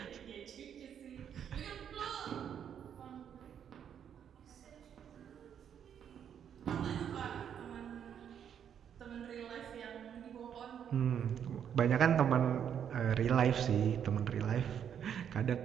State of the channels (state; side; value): quieter; left; 8.7 dB